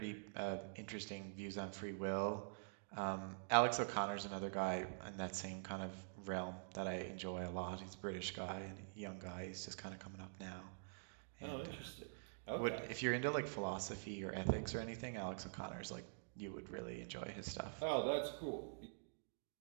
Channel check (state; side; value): silent; left; digital silence